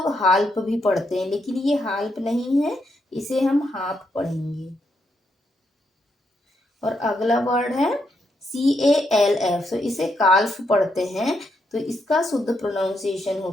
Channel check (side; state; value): both; normal; correlation 0.79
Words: हाल्प भी पढ़ते हैं, लेकिन ये हाल्प नहीं है, इसे हम हाफ पढ़ेंगे। और अगला वर्ड है CALF। तो इसे काल्फ पढ़ते हैं, तो इसका शुद्ध प्रोनाउंसिएशन